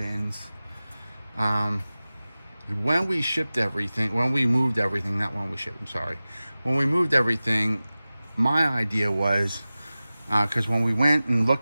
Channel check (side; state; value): both; inverted; correlation -0.97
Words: When we shipped everything, when we moved everything, not when we shipped, I'm sorry. When we moved everything, my idea was, because when we went and